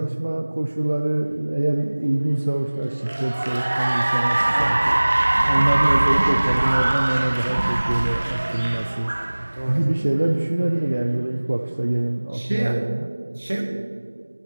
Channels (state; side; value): inverted; both; correlation -1.00